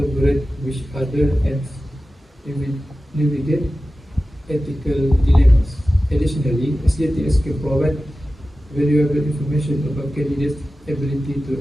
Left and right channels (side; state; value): both; normal; correlation 0.95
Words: with others, and navigate ethical dilemmas. Additionally, SJTS can provide valuable information about candidates' ability to